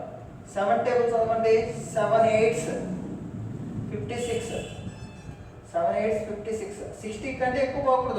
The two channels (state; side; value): identical; both; correlation 1.00